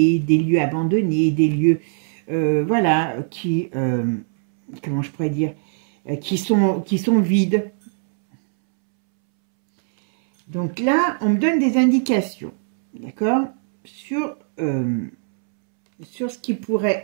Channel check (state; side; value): silent; left; 65 dB below the other